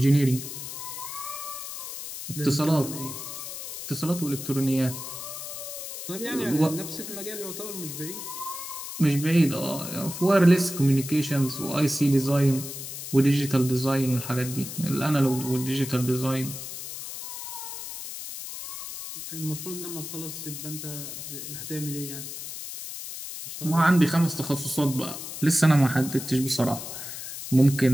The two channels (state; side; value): noise; left; hiss, 8 dB below the sound